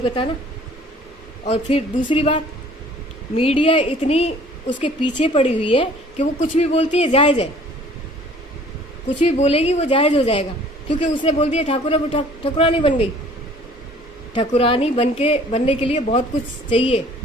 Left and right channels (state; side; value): normal; both; correlation 0.53